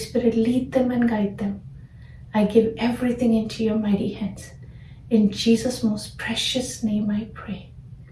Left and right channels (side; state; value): both; identical; correlation 1.00